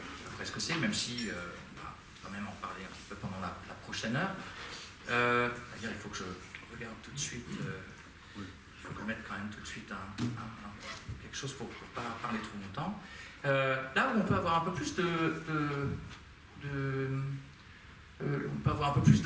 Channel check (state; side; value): identical; both; correlation 1.00